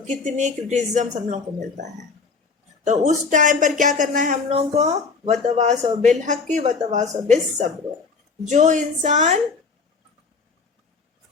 کتنی کرٹیسزم ہم لوگ کو ملتا ہے۔ تو اس ٹائم پر کیا کرنا ہے ہم لوگوں کو؟ وتواصوا بالحق وتواصوا بالصبر۔ جو انسان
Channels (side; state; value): right; quieter; 4.7 dB